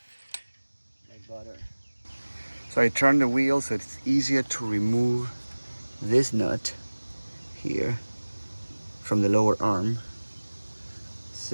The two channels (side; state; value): both; inverted; correlation -1.00